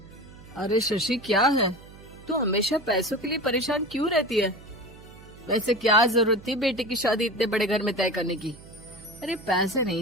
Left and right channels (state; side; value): noise; right; hum, 20 dB below the sound